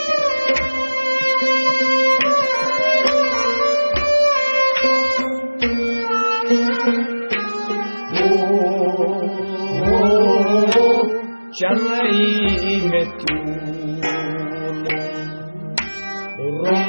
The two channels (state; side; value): inverted; both; correlation -1.00